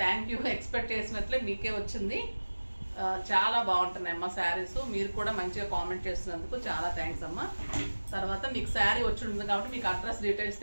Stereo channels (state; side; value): inverted; both; correlation -1.00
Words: థ్యాంక్ యూ. ఎక్స్పెక్ట్ చేసినట్లే మీకే వచ్చింది. చాలా బాగుంటున్నాయి అమ్మ శారీస్. మీరు కూడా మంచిగా కామెంట్ చేస్తున్నందుకు చాలా థ్యాంక్స్ అమ్మ. తర్వాత మీకు శారీ వచ్చి ఉంటుంది కాబట్టి మీకు అడ్రస్ డీటెయిల్స్